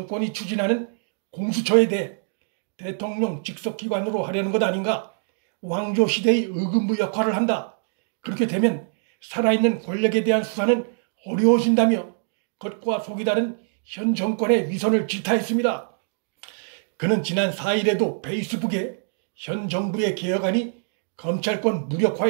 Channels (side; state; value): left; silent; digital silence